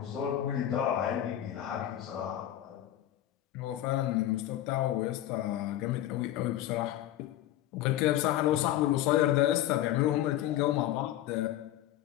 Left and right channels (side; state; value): right; quieter; 12.9 dB